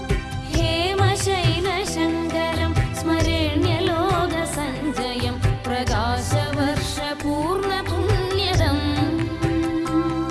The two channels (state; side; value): identical; both; correlation 1.00